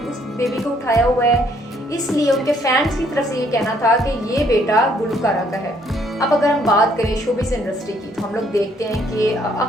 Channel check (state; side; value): normal; both; correlation 0.66